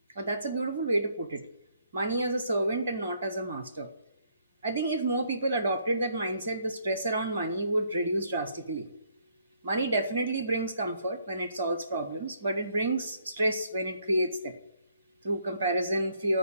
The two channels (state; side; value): inverted; both; correlation -0.68